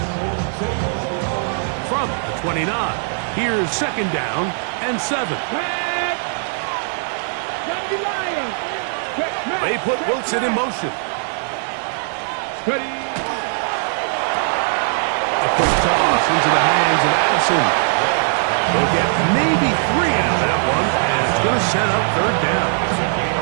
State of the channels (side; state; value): left; silent; 62 dB below the other